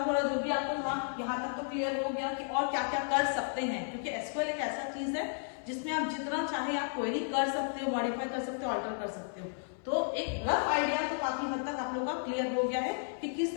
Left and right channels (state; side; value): silent; right; 56 dB below the other